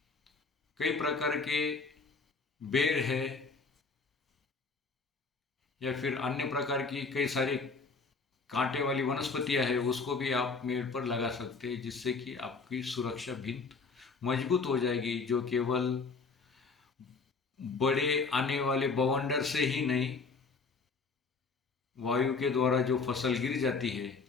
कई प्रकार के बेर है या फिर अन्य प्रकार की कई सारी कांटे वाली वनस्पतियां है उसको भी आप मेड़ पर लगा सकते हैं, जिससे कि आपकी सुरक्षा भिंत मजबूत हो जाएगी, जो केवल बड़े आने वाले बवंडर से ही नहीं, वायु के द्वारा जो फसल गिर जाती है,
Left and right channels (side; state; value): right; quieter; 4.4 dB